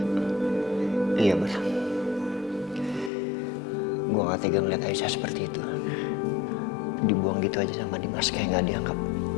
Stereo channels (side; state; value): right; drops out; at 3.1 s